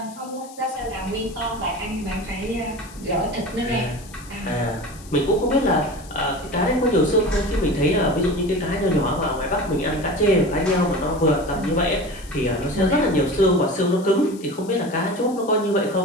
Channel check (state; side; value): noise; left; hiss, 21 dB below the sound